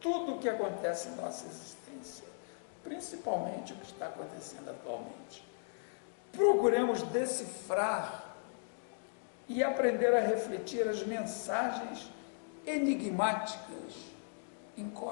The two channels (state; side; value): silent; right; digital silence